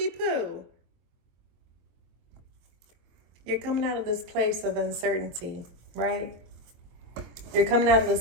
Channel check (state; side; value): late; left; 23 ms